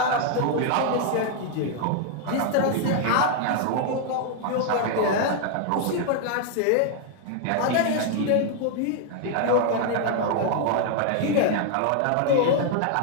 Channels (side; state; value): both; different; correlation 0.00